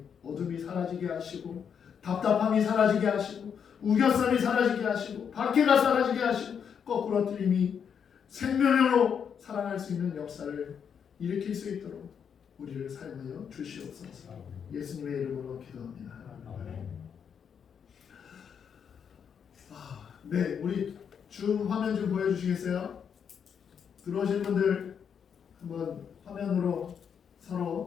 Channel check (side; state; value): right; quieter; 7.4 dB